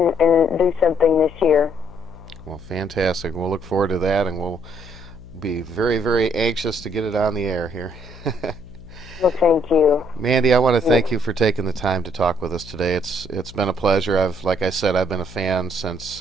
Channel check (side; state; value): left; noise; hum, 18 dB below the sound